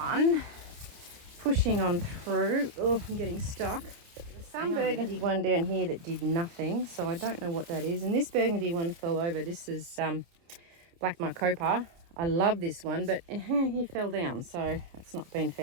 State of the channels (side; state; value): left; late; 29 ms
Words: Pushing on through. Oh, I'm getting stuck. There's some burgundy one down here that did nothing, so I don't know what that is. And this burgundy one fell over. This is Black Marcopa. I love this one, but he fell down, so it's not been